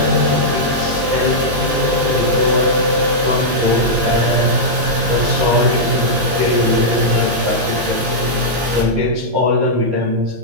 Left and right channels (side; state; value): left; late; 16 ms